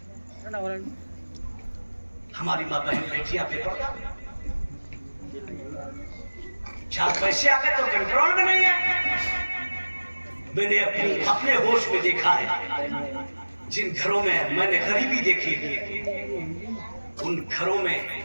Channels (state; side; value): inverted; both; correlation -1.00